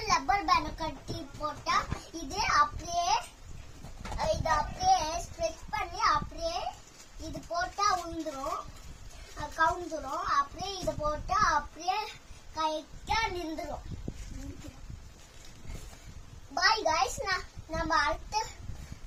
ரப்பர் பேண்ட் கட்டி போட்டா இது அப்படியே ஸ்ட்ரெச் பண்ணி அப்படியே இது போட்டா உந்துரும், கவுந்துரும். அப்படியே இது போட்டா அப்படியே கரெக்டா நின்றுரும். பாய் கைஸ், நம்ம அடுத்த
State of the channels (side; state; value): both; identical; correlation 1.00